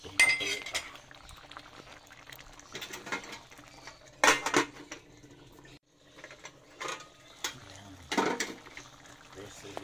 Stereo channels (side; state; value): both; identical; correlation 1.00